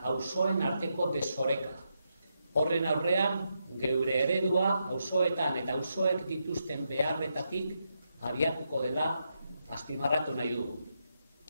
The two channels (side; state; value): both; inverted; correlation -0.83